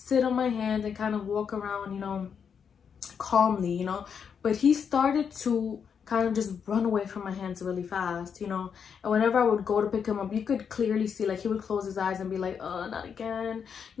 on my hand and kind of walk around, calmly, But he started to kind of just run away from my hands really fast, and whenever I would go to pick him up, you could clearly see, like, he would close his eyes and be like, oh, not again.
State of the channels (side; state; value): right; quieter; 7.0 dB